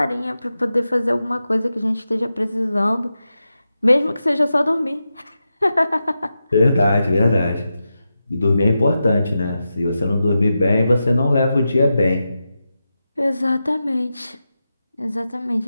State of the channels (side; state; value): both; inverted; correlation -0.90